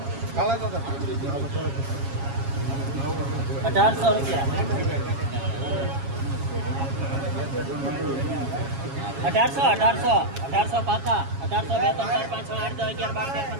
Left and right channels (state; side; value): late; left; 7.3 ms